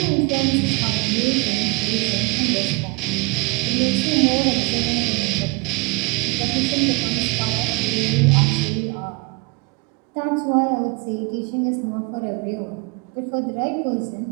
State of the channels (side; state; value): left; quieter; 27.4 dB